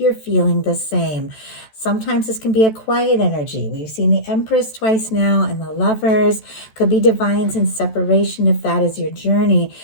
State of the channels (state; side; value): late; right; 14 ms